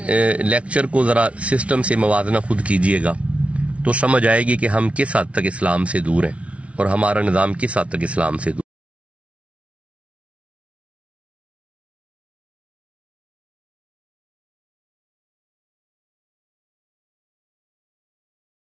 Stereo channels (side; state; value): left; late; 0.062 ms